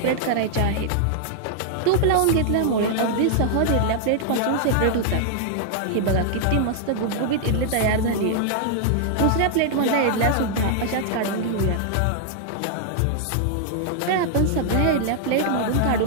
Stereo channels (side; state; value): both; different; correlation -0.01